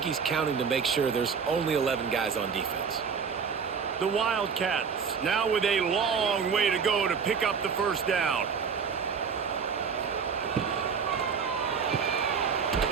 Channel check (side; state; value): left; quieter; 6.2 dB